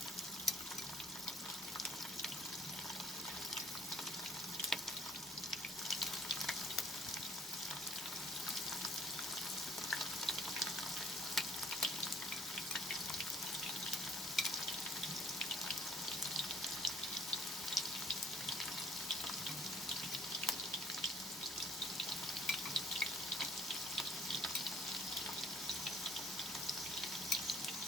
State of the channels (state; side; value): normal; both; correlation 0.59